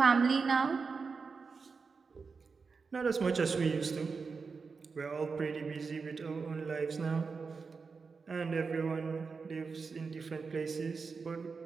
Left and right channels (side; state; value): left; quieter; 4.9 dB